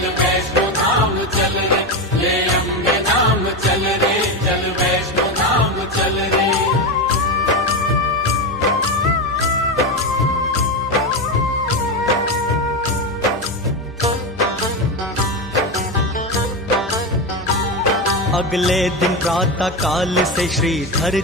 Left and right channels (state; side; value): normal; both; correlation 0.14